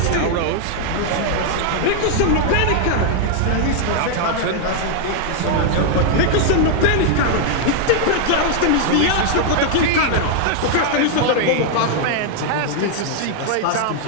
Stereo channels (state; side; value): different; both; correlation 0.00